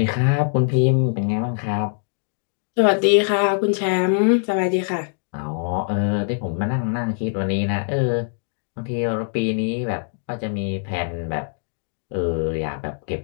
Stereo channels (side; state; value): right; silent; 62 dB below the other